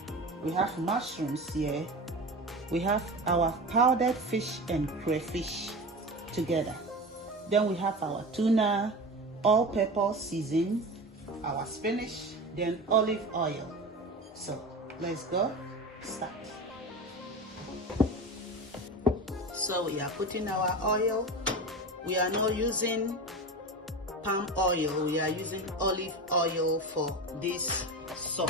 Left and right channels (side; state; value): both; normal; correlation 0.28